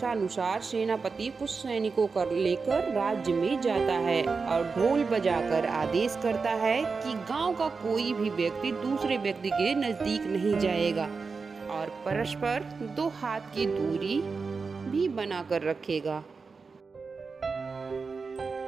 सेनापति कुछ सैनिकों को लेकर राज्य में जाता है और ढोल बजाकर आदेश करता है कि गांव का कोई भी व्यक्ति दूसरे व्यक्ति के नजदीक नहीं जाएगा और परस्पर 2 हाथ की दूरी भी बनाकर रखेगा।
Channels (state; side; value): quieter; left; 4.7 dB